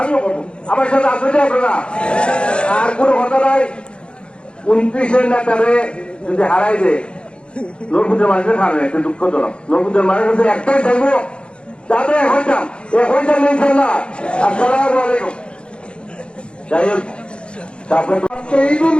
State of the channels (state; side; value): late; right; 0.056 ms